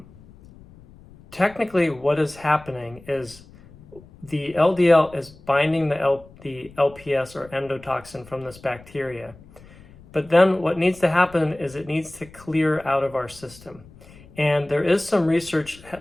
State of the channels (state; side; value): noise; left; rumble, 23 dB below the sound